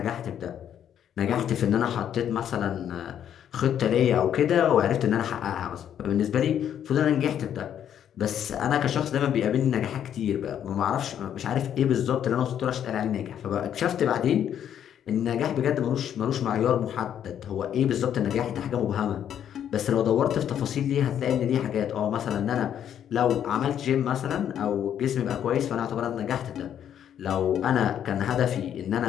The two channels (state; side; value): quieter; right; 9.7 dB